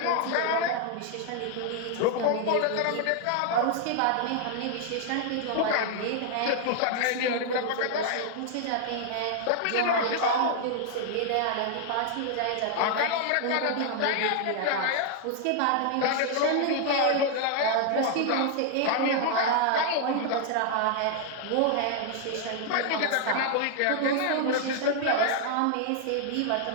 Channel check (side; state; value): both; different; correlation 0.00